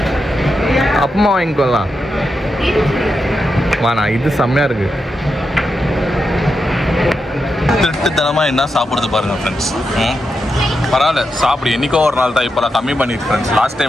அப்பமா வாங்கிக்கொள்ளலாம். வாண்ணா, இது செம்மையாக இருக்கு. திருட்டுத்தனமாக என்ன சாப்பிடுறது பாருங்க ஃப்ரெண்ட்ஸ். பரவாயில்ல சாப்பிடு, என்றைக்கோ ஒரு நாள் தான். இப்போலாம் கம்மி பண்ணிட்டு ஃப்ரெண்ட்ஸ். லாஸ்ட்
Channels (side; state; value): both; normal; correlation 0.86